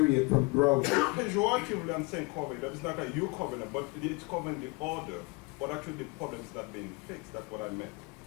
from growing. Pejoratively, I'm saying cover it up. It's not that you covering it, but it's covering the order. But actually, the problem is not being fixed. That's what I meant.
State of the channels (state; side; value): quieter; right; 28.5 dB